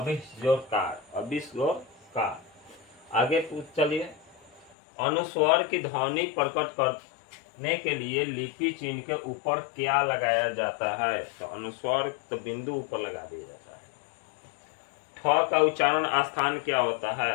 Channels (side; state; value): right; drops out; at 4.8 s